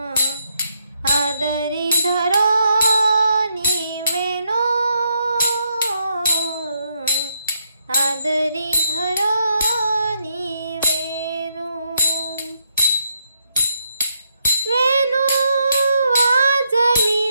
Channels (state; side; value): inverted; both; correlation -0.77